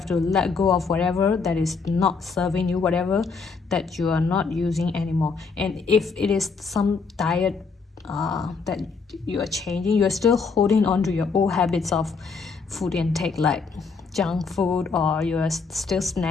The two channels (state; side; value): quieter; right; 4.9 dB